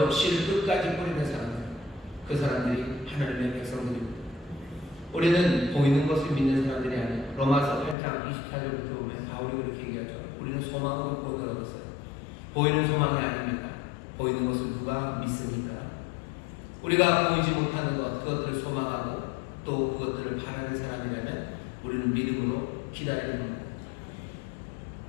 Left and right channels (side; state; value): right; drops out; at 8.0 s